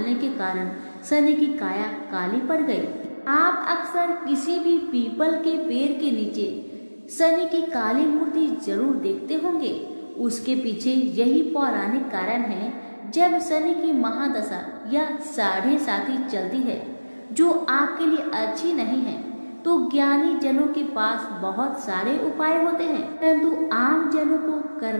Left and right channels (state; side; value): inverted; both; correlation -1.00